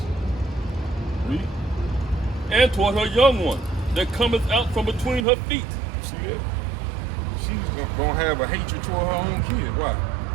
Read. and toward her young one that cometh out from between her feet. See that? She's gonna have a hatred toward her own kids. Why?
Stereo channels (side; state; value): left; drops out; at 5.2 s